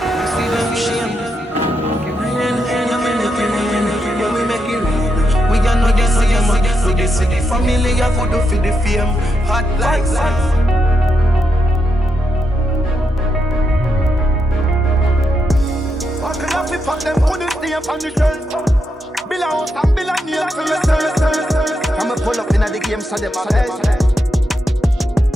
see them shame. Rain, I'm in the rain, yeah, we make it rain. We are not the same, we the city family, I could do for the fame. Hot like sun. Fuck them, put this name on the shelf. Bill a house and bill a name for yourself. I'ma pull up in the game so them a best.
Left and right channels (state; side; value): normal; both; correlation 0.83